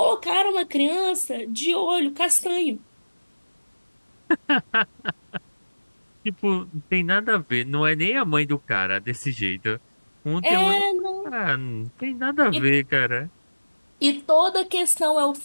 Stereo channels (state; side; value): inverted; both; correlation -1.00